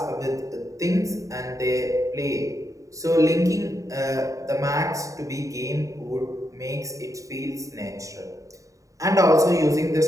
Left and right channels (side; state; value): left; late; 0.16 ms